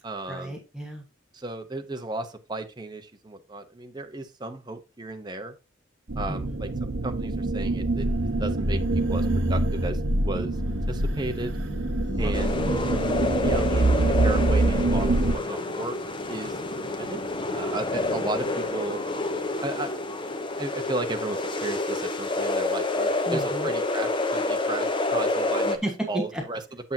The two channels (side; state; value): both; normal; correlation 0.59